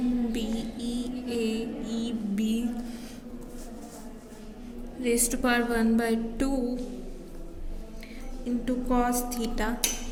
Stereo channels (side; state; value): both; identical; correlation 1.00